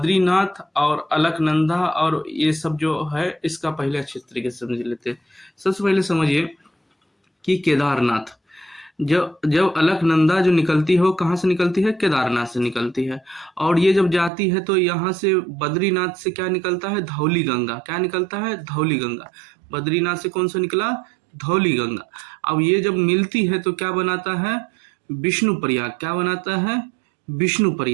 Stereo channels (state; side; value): drops out; left; at 14.3 s